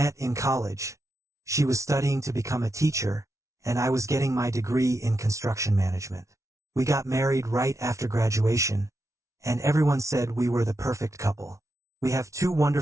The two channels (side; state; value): left; late; 0.14 ms